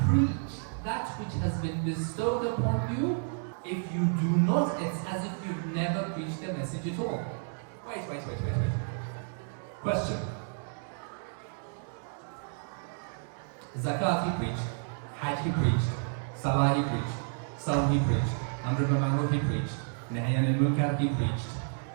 preach that which has been bestowed upon you. If you do not, it's as if you've never preached the message at all. Wait. Question. Zakat he preached, Hajj he preached, Salah he preached, Salam he preached, Amr bil Ma'ruf he preached, Nahy anil Munkar he preached,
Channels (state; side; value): silent; left; 57 dB below the other